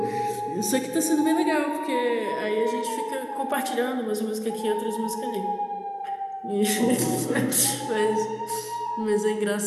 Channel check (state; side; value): identical; both; correlation 1.00